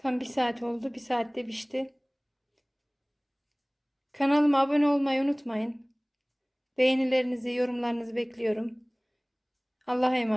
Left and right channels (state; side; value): identical; both; correlation 1.00